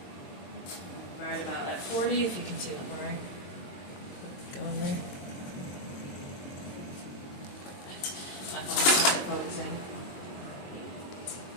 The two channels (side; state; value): right; late; 22 ms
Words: Right about at 40, if you can see that line. Go in there. My phone's not focusing.